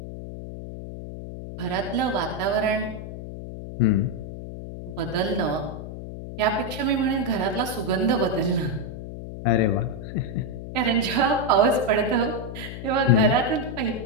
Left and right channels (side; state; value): left; noise; hum, 9 dB below the sound